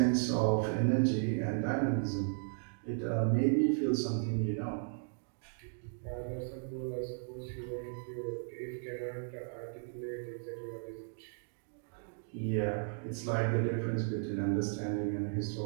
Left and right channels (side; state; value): left; silent; digital silence